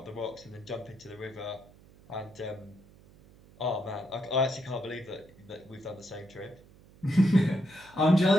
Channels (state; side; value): noise; right; hum, 25 dB below the sound